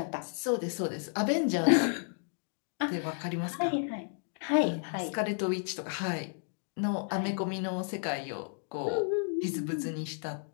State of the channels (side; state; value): right; silent; 56 dB below the other